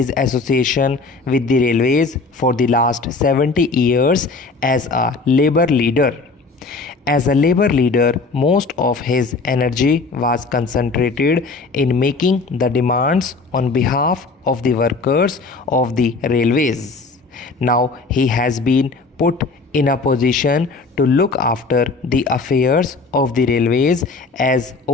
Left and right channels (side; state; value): right; quieter; 4.0 dB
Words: association with the railways for the last 70 years as a labor leader. As a labor leader, most of his energy was concentrated in making the demands on behalf of the workers of the railways. Now he has been put in a position to look after the affairs of the railways as